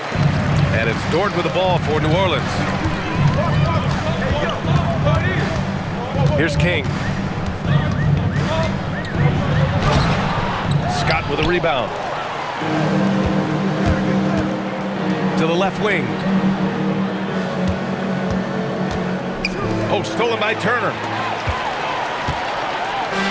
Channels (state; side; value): identical; both; correlation 1.00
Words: And it's Dort with the ball for New Orleans. Here's King. Scott with a rebound. To the left wing. Oh, stolen by Turner.